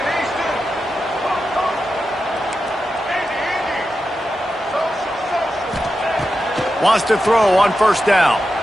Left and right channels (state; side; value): normal; both; correlation 0.90